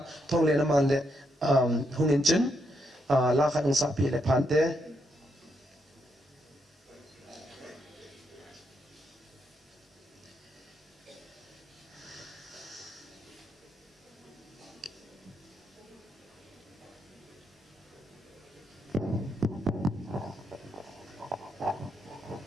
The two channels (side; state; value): both; normal; correlation 0.79